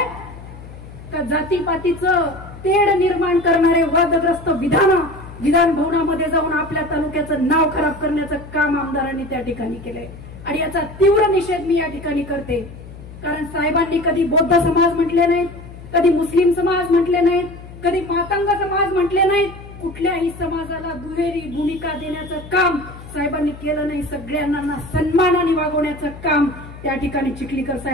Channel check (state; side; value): noise; left; hum, 16 dB below the sound